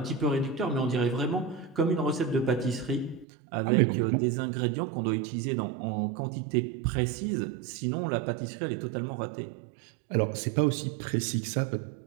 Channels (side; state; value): left; drops out; at 3.2 s